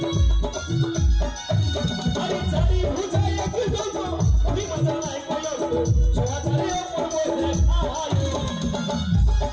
আরে চারি বুঝাই একটু জন্য তুমি মজা নাই সবাই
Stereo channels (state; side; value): identical; both; correlation 1.00